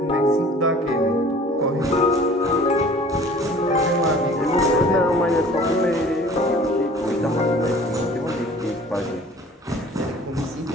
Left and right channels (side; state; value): both; normal; correlation 0.48